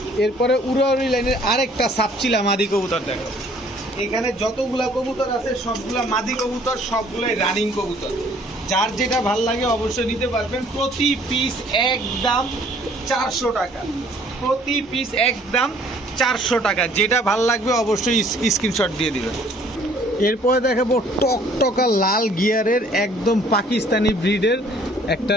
এরপরে উড়াউড়ি লাইনের আরেকটা সাপচিলা মাদি কবুতর দেখাবো। এখানে যতগুলা কবুতর আছে সবগুলা মাদি কবুতর, সবগুলাই রানিং কবুতর। যার যেটা ভাল লাগে অবশ্যই নিতে পারবেন। প্রতি পিস একদম 400 টাকা, প্রতি পিস একদম 400 টাকা। যেটা ভাল লাগবে অবশ্যই স্ক্রিনশট দিয়ে দিবেন। এরপরে দেখাবো টকটকা লাল গিয়ারের একদম পাকিস্তানি ব্রিডের একটা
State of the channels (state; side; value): normal; both; correlation 0.58